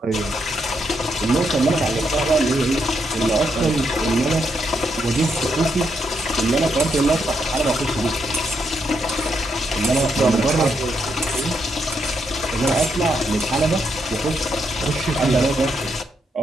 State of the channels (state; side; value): normal; both; correlation 0.79